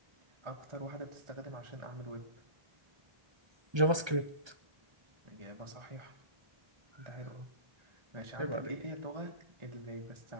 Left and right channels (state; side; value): late; left; 1.2 ms